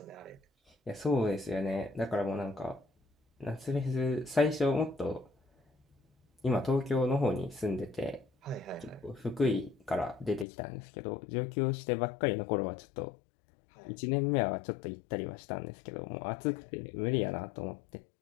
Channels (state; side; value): drops out; right; at 10.5 s